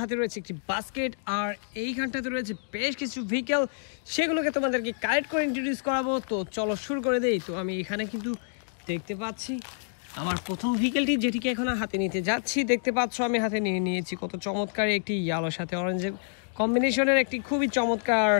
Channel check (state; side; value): silent; right; digital silence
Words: হাতে রয়েছে একটি বাস্কেট, আর এইখানটাতে রয়েছে বেশ কিছু ভেহিকেল। সেগুলোকে তোমাদেরকে কালেক্ট করে ইন্ট্রোডিউস করাবো। তো চলো শুরু করে দেই। তো আমি এখানে কিন্তু দেখতে পাচ্ছি আমার প্রথম ভেহিকেলটি, যেটিকে এখন হাতে নিতে যাচ্ছি। দেখতে পাচ্ছ আমি হাতে নিয়ে নিয়েছি কত চমৎকার একটি ইয়েলোর সাথে অরেঞ্জের কম্বিনেশনের একটি খুবই চমৎকার